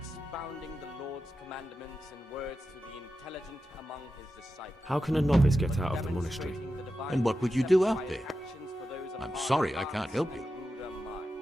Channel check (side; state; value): both; normal; correlation 0.90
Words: the Lord's commandments in words to the intelligent among How can a novice get out of the monastery? And what would you do out there? I'm sorry, I can't help you.